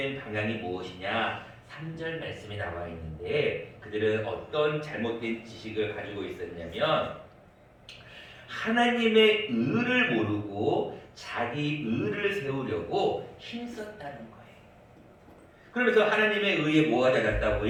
방향이 무엇이냐? 3절 말씀이 나와 있는데 그들은 어떤 잘못된 지식을 가지고 있었냐면 하나님의 의를 모르고 자기 의를 세우려고 힘썼다는 거예요. 그러면서 하나님의 의에 뭐가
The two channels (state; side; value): identical; both; correlation 1.00